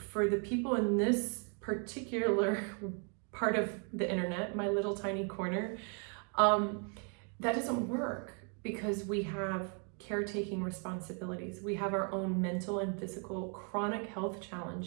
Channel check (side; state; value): left; quieter; 39.9 dB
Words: the people in this particular part of the internet, my little tiny corner, that doesn't work, because we have caretaking responsibilities. We have our own mental and physical chronic health